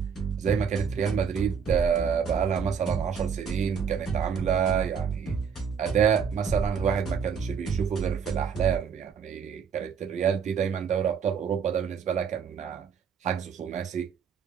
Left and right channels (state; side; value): quieter; left; 6.8 dB